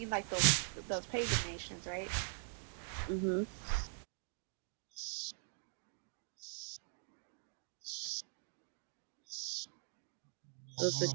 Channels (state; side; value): silent; left; digital silence